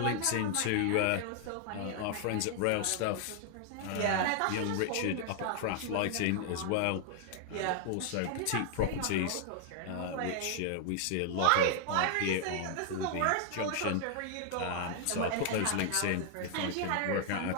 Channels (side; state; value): both; different; correlation 0.00